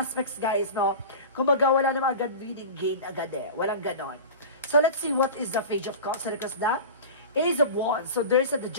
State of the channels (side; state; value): both; inverted; correlation -0.32